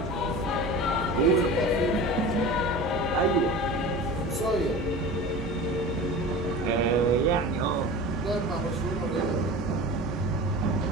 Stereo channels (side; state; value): both; normal; correlation 0.34